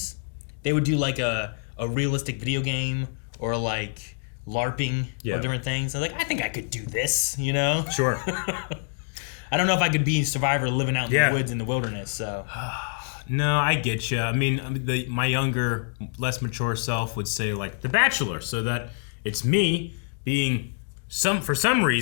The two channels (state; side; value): silent; right; 60 dB below the other